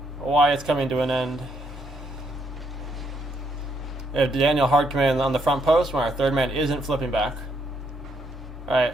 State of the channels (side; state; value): both; normal; correlation 0.74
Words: why it's coming to an end. If Daniel hard committed on the front post when our third man isn't flipping back. Right?